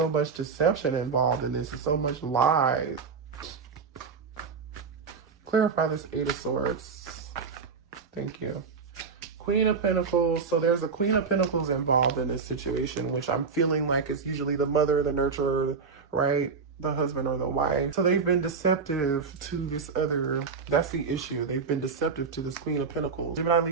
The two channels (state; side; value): quieter; left; 5.2 dB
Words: much deception involved in this, and so much lies. Clarify this Eight of Swords. Thank you. Queen of Pentacles. So there's a Queen of Pentacles involved in this situation, which I'm feeling like is usually the mother, the nurturer, right? The husband or the wife. So they've been deceptive to this other, that's the issue. They've been deceptive to this Queen of Pentacles. Gemini,